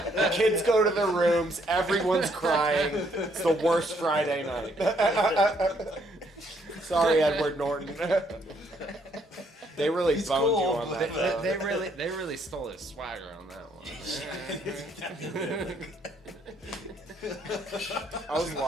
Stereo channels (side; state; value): both; normal; correlation 0.69